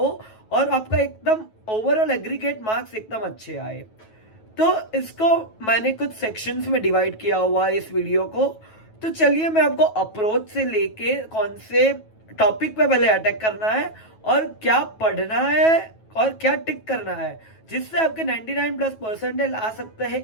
और आपका एकदम ओवरऑल एग्रीगेट मार्क्स एकदम अच्छे आए। तो इसको मैंने कुछ सेक्शंस में डिवाइड किया हुआ है इस वीडियो को। तो चलिए मैं आपको अप्रोच से लेके कौन से टॉपिक पे पहले अटैक करना है और क्या पढ़ना है और क्या टिक करना है, जिससे आपके 99+ परसेंटेज आ सकते हैं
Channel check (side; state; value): right; late; 9.2 ms